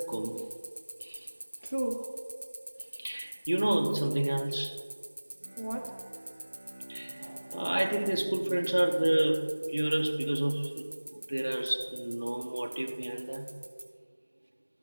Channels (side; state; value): both; inverted; correlation -1.00